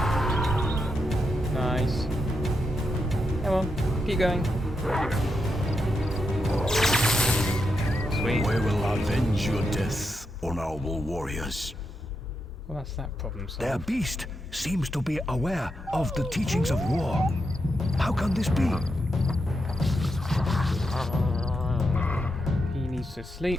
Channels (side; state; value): both; normal; correlation 0.84